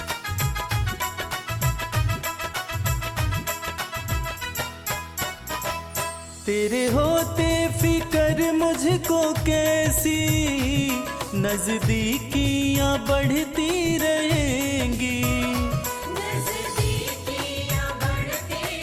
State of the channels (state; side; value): identical; both; correlation 1.00